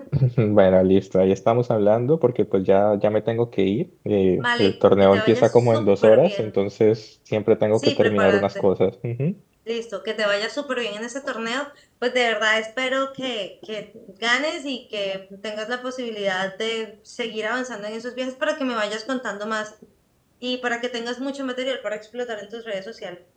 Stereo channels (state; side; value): identical; both; correlation 1.00